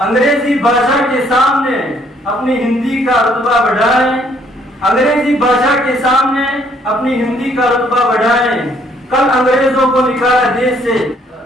अंग्रेजी भाषा के सामने अपनी हिंदी का रुतबा बढ़ाएं। अंग्रेजी भाषा के सामने अपनी हिंदी का रुतबा बढ़ाएं। कल अंग्रेजों को निकाला देश से,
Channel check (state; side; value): normal; both; correlation 0.65